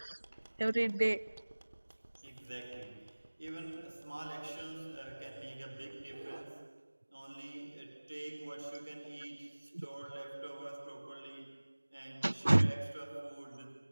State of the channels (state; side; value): inverted; both; correlation -1.00